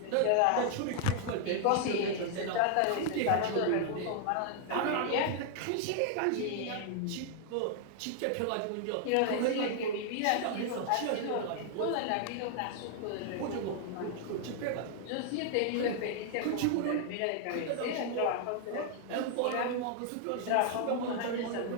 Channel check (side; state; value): both; different; correlation 0.00